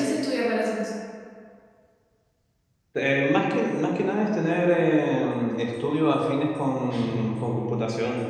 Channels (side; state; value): both; identical; correlation 1.00